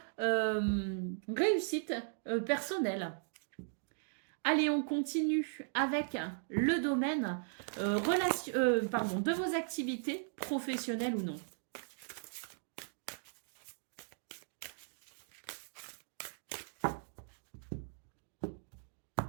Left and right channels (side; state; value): left; silent; digital silence